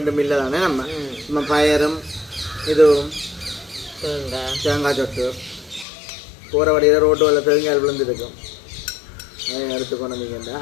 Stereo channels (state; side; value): drops out; right; at 5.9 s